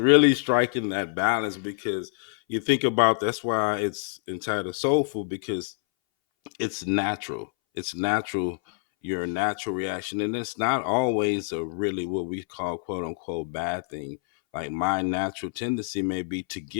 striking that balance, because you think about, that's why it's entitled soulful, because it's natural. It's natural, your natural reaction. And it's not always a really what we call quote unquote bad thing. Like my natural tendency may be to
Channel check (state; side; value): silent; right; 61 dB below the other